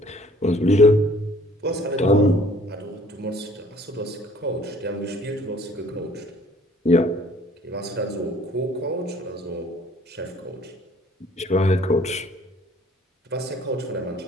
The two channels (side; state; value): both; normal; correlation 0.55